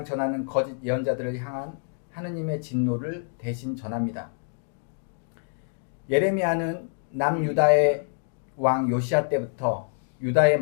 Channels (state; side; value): silent; right; 60 dB below the other